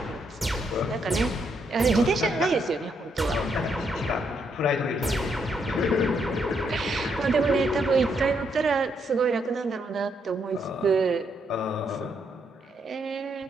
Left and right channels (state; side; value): normal; both; correlation 0.76